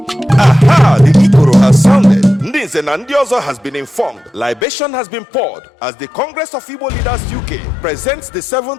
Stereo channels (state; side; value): drops out; right; at 4.7 s